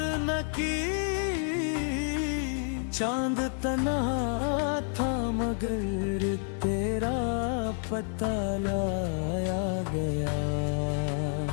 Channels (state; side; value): silent; right; 56 dB below the other